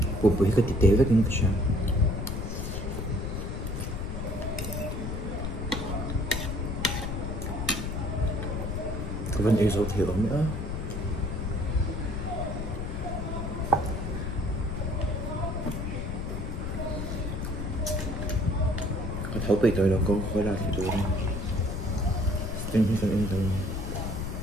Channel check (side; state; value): left; noise; rumble, 4 dB below the sound